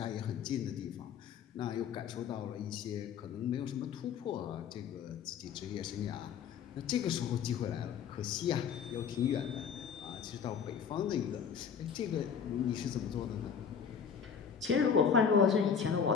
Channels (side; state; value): right; quieter; 7.1 dB